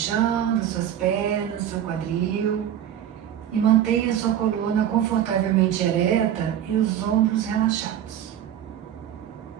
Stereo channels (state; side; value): quieter; left; 10.4 dB